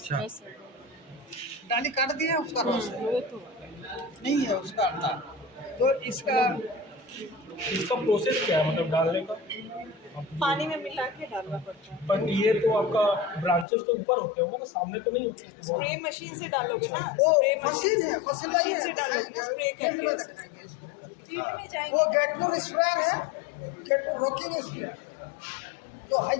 डाली काट दिया उसका रॉस है, नहीं है उसका अंडा। तो इसका इसका प्रोसेस क्या है, मतलब डालने का? पानी में मिला के डालना पड़ता है। बट ये तो आपका ब्रांचेस तो ऊपर होते होंगे ना, सामने तो नहीं होते? स्प्रे मशीन से डालोगे ना, वो स्प्रे मशीन है, मशीन लगी है, से डालोगे, स्प्रे फील्ड में करके दिखाएंगे स्प्रे। फील्ड में जाएंगे। वो गेटपुर स्प्रेयर है, गेटपुर रॉकिंग स्प्रेयर, तो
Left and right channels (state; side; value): drops out; right; at 13.7 s